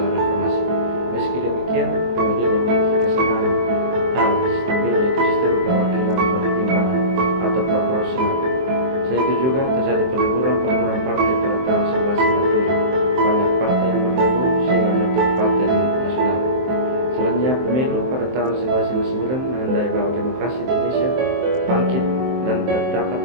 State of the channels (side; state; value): left; late; 23 ms